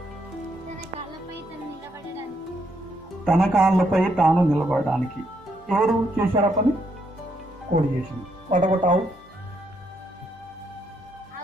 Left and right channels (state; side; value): normal; both; correlation 0.75